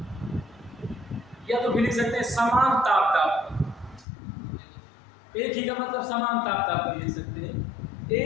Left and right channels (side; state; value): right; drops out; at 4.0 s